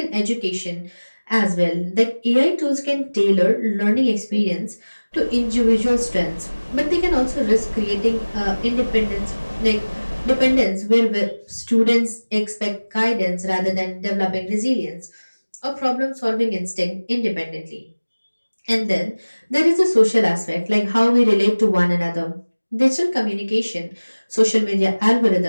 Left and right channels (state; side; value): inverted; both; correlation -1.00